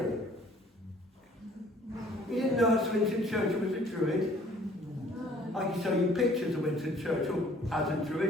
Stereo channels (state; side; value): normal; both; correlation 0.57